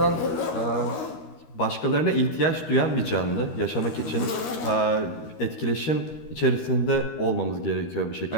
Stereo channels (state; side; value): late; right; 13 ms